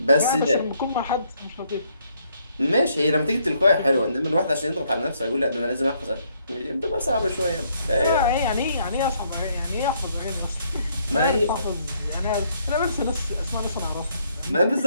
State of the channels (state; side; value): inverted; both; correlation -0.70